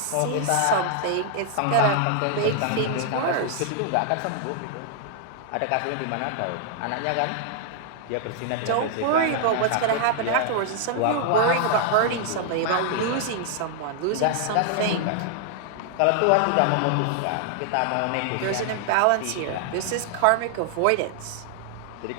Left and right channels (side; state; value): both; different; correlation 0.00